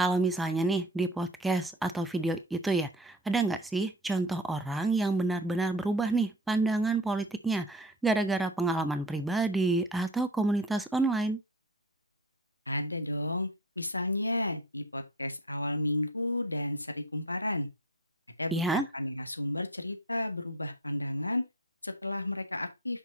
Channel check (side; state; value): both; normal; correlation 0.34